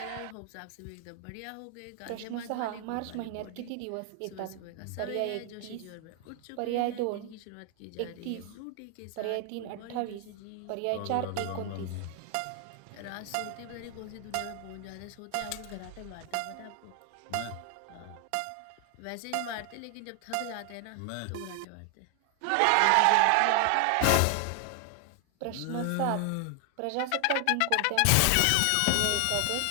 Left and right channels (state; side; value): different; both; correlation 0.00